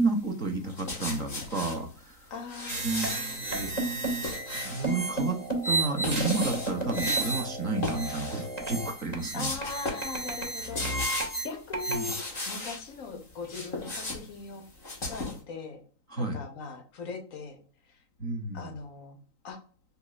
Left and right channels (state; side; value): late; right; 3.9 ms